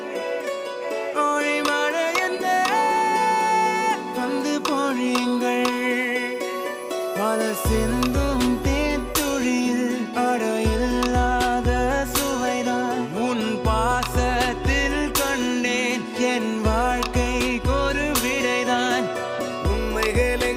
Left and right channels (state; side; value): identical; both; correlation 1.00